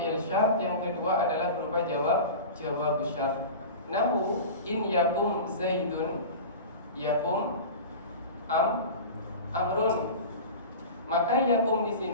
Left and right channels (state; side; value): inverted; both; correlation -0.32